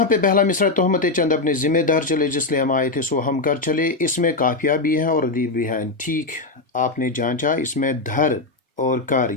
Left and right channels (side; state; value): right; quieter; 3.5 dB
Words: पे पहला मिसरा, तोहमत चंद अपने ज़िम्मेदार चले, जिसलिए हम आए थे सो हम कर चले, इसमें काफिया भी है और रदीफ भी है। ठीक, आपने जांचा, इसमें धर और कर